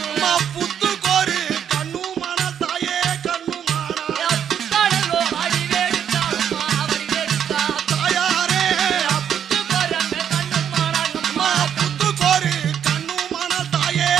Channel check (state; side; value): quieter; left; 8.8 dB